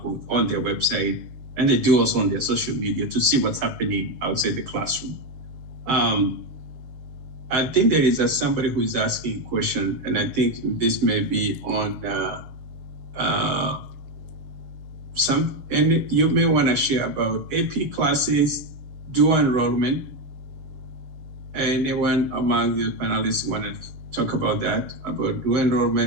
on their website, and they do also on their social media to see what's happening outside the classroom. I think there is somebody who is asking a question, and I think this may be on and you may want to share about AP classes, dual enrollment. Anyone among the panelists want to talk about that, about dual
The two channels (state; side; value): late; left; 6.6 ms